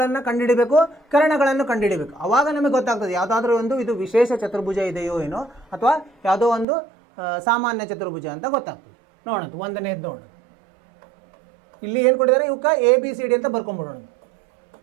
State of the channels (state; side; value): drops out; left; at 6.7 s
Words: ಕಂಡುಹಿಡಬೇಕು, ಕರ್ಣಗಳನ್ನು ಕಂಡುಹಿಡಬೇಕು. ಆವಾಗ ನಮಗೆ ಗೊತ್ತಾಗ್ತದೆ ಯಾವುದಾದ್ರೂ ಒಂದು ಇದು ವಿಶೇಷ ಚತುರ್ಭುಜ ಇದೆಯೋ ಏನೋ, ಅಥವಾ ಯಾವುದೋ ಒಂದು ಸಾಮಾನ್ಯ ಚತುರ್ಭುಜ ಅಂತ ಗೊತ್ತಾಗ್ತದೆ. ನೋಡೋಣ, 1ನೇದು ನೋಡೋಣ. ಇಲ್ಲಿ ಏನು ಕೊಟ್ಟಿದ್ದಾರೆ? ಇವಕ್ಕೆ ABCD ಅಂತ ಬರ್ಕೊಂಡ್ಬಿಡೋಣ.